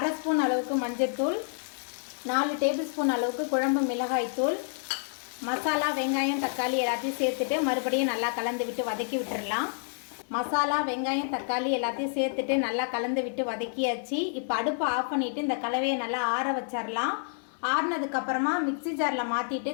ஸ்பூன் அளவுக்கு மஞ்சள்தூள், 4 டேபிள் ஸ்பூன் அளவுக்கு குழம்பு மிளகாய் தூள், மசாலா வெங்காயம் தக்காளி எல்லாத்தையும் சேர்த்துட்டு மறுபடியும் நல்லா கலந்து விட்டு வதக்கி விட்டுடலாம். மசாலா வெங்காயம் தக்காளி எல்லாத்தையும் சேர்த்துட்டு நல்லா கலந்து விட்டு வதக்கியாச்சு. இப்போ அடுப்பை ஆஃப் பண்ணிவிட்டு இந்த கலவையை நல்லா ஆற வச்சிடலாம். ஆறினதுக்கப்புறமா மிக்சி ஜாரில் மாற்றிட்டு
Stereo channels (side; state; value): right; silent; digital silence